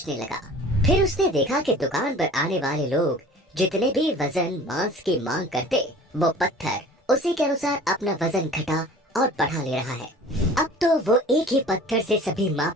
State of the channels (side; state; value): both; normal; correlation 0.44